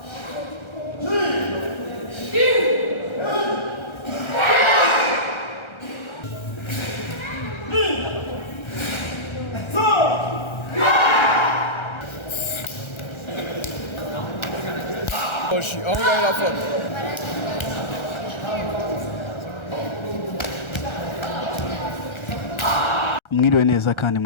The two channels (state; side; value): late; right; 1.3 ms